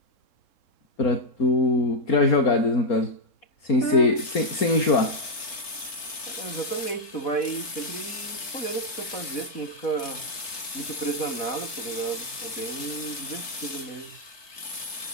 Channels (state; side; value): late; right; 4.5 ms